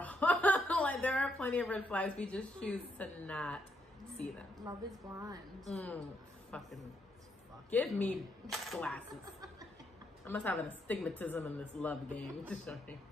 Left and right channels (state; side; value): normal; both; correlation 0.77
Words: Like, there are plenty of red flags. We just choose to not see them. Love is blind. Fucking give me glasses. I must have an astigmatism in this love game.